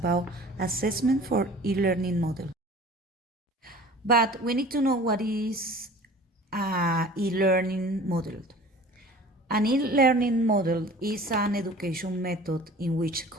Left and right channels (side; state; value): both; normal; correlation 0.45